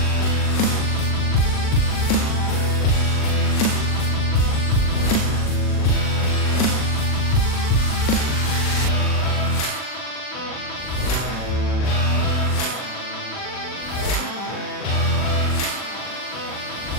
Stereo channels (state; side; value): late; right; 40 ms